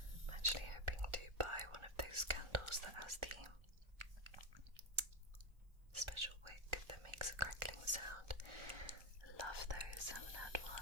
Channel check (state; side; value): late; left; 1.4 ms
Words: I'm actually hoping to buy one of those candles that has the special wick that makes a crackling sound. I love those. I haven't had